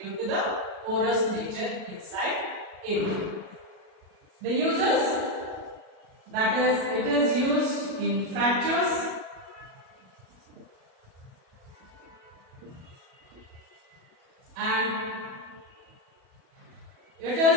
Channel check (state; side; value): late; left; 37 ms